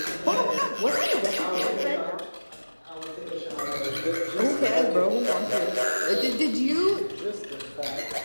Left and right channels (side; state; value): both; inverted; correlation -1.00